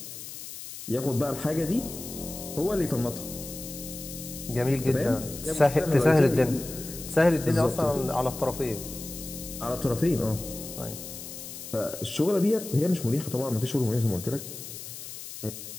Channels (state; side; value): noise; left; hiss, 11 dB below the sound